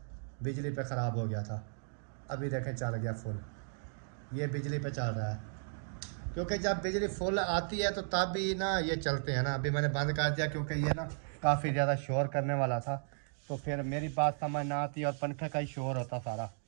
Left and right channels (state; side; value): silent; left; digital silence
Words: बिजली पे ख़राब हो गया था। अभी देखें चल गया फुल, ये बिजली पे चल रहा है, क्योंकि जब बिजली फुल आती है तो तब भी ना ये चलते हैं ना। अभी मैंने बंद कर दिया क्योंकि ये ना काफ़ी ज़्यादा शोर करने वाला था, तो फिर मेरी बात समझ ना आती और पंखे का ही शोर होता सारा।